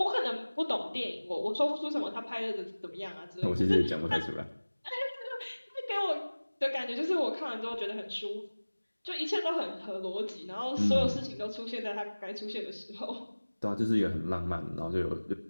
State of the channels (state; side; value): inverted; both; correlation -1.00